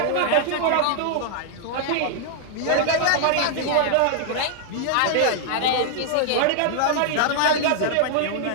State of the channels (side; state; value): both; different; correlation 0.00